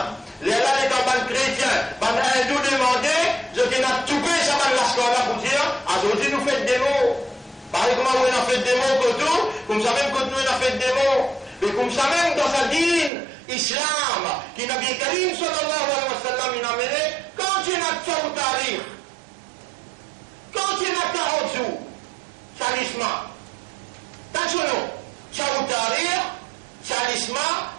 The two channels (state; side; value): drops out; left; at 13.1 s